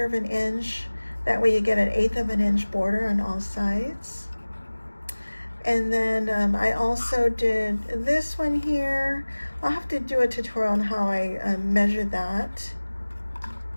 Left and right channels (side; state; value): both; inverted; correlation -1.00